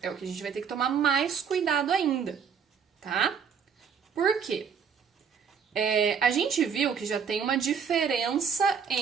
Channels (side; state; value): left; quieter; 6.8 dB